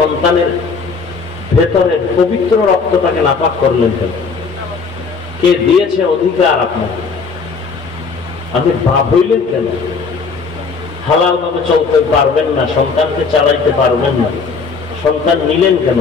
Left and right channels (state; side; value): quieter; right; 4.9 dB